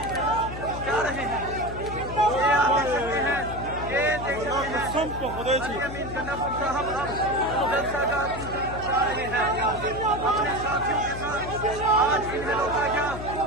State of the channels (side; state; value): left; noise; hum, 9 dB below the sound